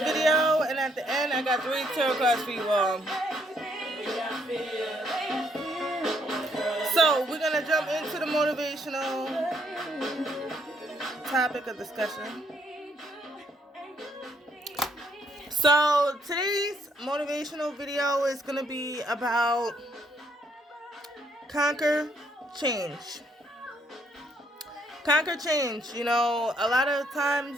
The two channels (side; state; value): both; normal; correlation 0.71